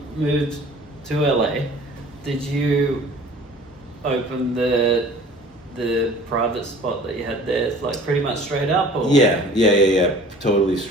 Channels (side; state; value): both; normal; correlation 0.47